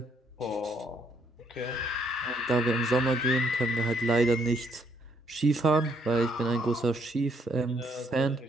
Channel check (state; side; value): normal; both; correlation 0.70